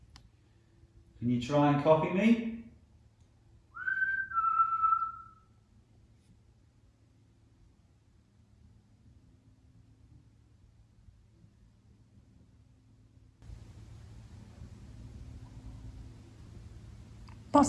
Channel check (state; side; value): identical; both; correlation 1.00